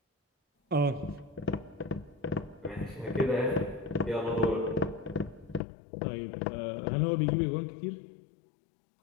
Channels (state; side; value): drops out; right; at 5.6 s